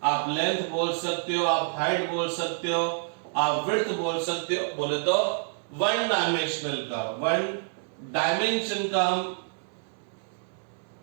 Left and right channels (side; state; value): left; silent; 60 dB below the other